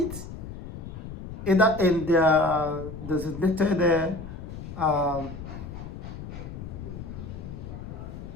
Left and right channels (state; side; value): noise; left; rumble, 10 dB below the sound